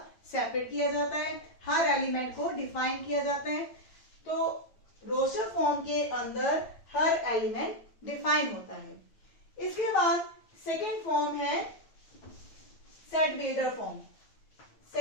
सेपरेट किया जाता है, हर एलिमेंट को डिफाइन किया जाता है। तो रोस्टर फॉर्म के अंदर हर एलिमेंट डिफाइन होता है। इसके बाद सेकेंड फॉर्म है set builder form.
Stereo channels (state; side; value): late; right; 9.1 ms